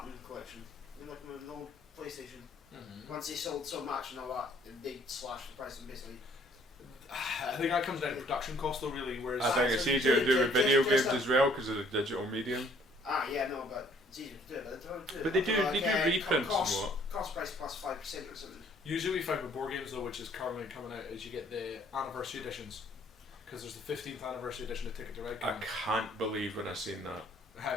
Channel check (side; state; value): both; normal; correlation 0.60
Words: collection, like an old PlayStation. Mm-hmm. Once they sold so much and all that, they slashed the price and basically. I think that comes down to production cost though, really. Whereas I think so it's you easier to do with video just games as well because of the digital medium. Yeah, no, but it's easier to do it, but they don't do it. But they do reprints and what. Cost price plus 5% or something. usually we find with board games though, which is currently coming out, is you get the anniversary editions. Because there's the 15th anniversary edition of Ticket to Ride. I can't believe when I seen that. How?